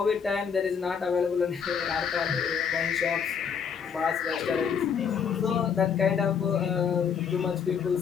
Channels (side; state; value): right; quieter; 6.9 dB